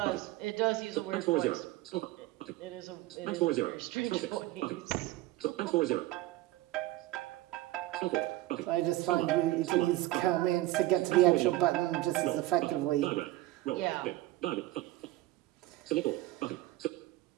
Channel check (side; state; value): left; quieter; 17.0 dB